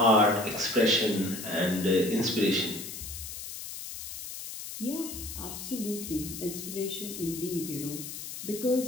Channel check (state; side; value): noise; left; hiss, 9 dB below the sound